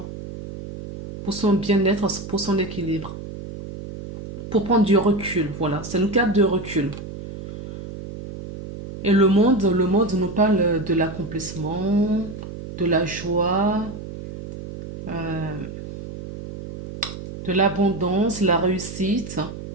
Pour son bien-être, pour son équilibre. Pour prendre du recul, voilà. C'est une carte de recul. Et le monde nous parle de l'accomplissement, de la joie, euh, de l'abondance, la réussite.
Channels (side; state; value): right; noise; hum, 11 dB below the sound